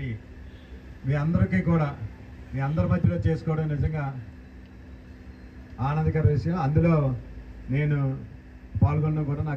మీ అందరికీ కూడా మీ అందరి మధ్యలో చేసుకోవడం నిజంగా ఆనందకర విషయం. అందులో నేను పాల్గొనడం కూడా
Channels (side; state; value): both; identical; correlation 1.00